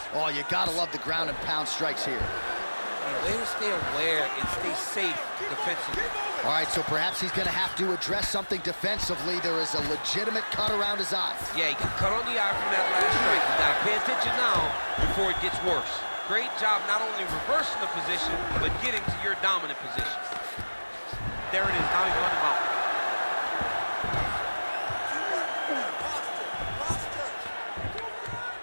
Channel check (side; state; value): both; inverted; correlation -1.00